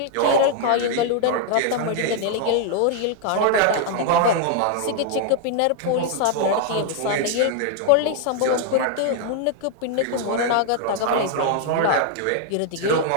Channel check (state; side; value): different; both; correlation 0.00